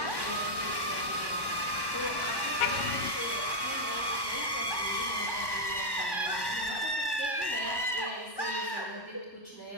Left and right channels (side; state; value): right; late; 1.1 ms